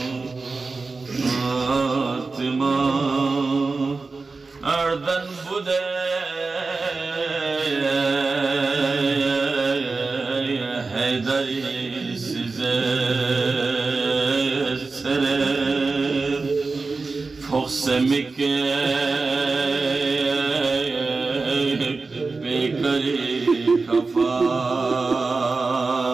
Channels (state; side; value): quieter; left; 4.0 dB